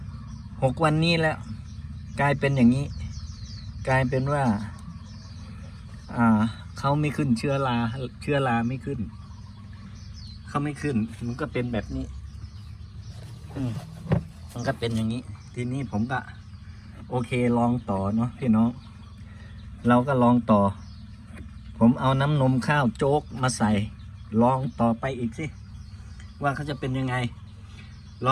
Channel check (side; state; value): both; identical; correlation 1.00